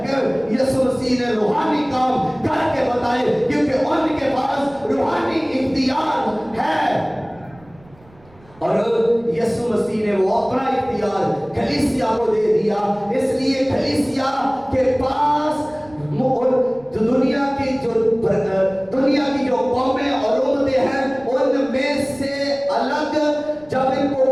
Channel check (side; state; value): right; noise; rumble, 27 dB below the sound